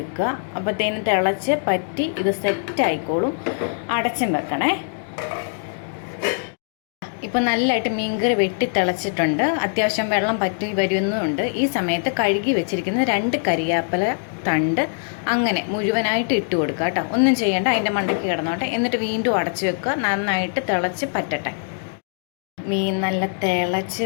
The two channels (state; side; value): silent; right; digital silence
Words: അപ്പോഴത്തേനും തിളച്ച് പറ്റി ഇത് സെറ്റ് ആയിക്കോളും. അടച്ചും വെക്കണേ. ഇപ്പം നല്ലതായിട്ട് മീൻകറി വെട്ടി തിളച്ചിട്ടുണ്ട്. അത്യാവശ്യം വെള്ളം പറ്റി വരുന്നുണ്ട്. ഈ സമയത്ത് കഴുകി വെച്ചിരിക്കുന്ന 2 കരിയാപ്പില തണ്ട് അങ്ങനെ മുഴുവനായിട്ട് ഇട്ട് കൊടുക്കുക കേട്ടോ. ഒന്നും ചെയ്യേണ്ട, അതിൻ്റെ മണ്ടയ്ക്ക് കിടന്നോട്ടെ. എന്നിട്ട് വീണ്ടും അടച്ചു വെക്കുക. നന്നായിട്ട് തിളച്ച് പറ്റട്ടെ. മീൻ നല്ല